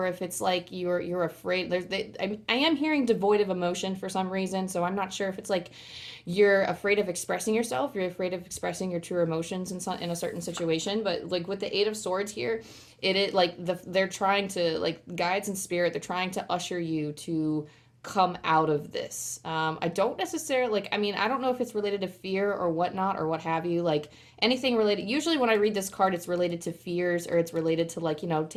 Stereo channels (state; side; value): identical; both; correlation 1.00